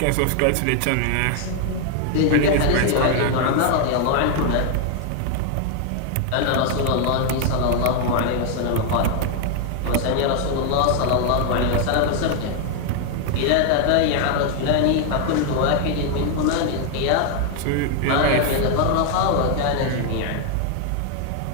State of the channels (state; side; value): different; both; correlation 0.00